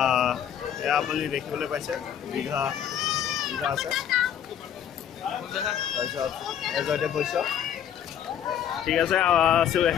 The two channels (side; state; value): right; quieter; 9.4 dB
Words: এয়া আপুনি দেখিবলৈ পাইছে দীঘা আছে তাৰপিছত এজতে পইচা ঠিক আছে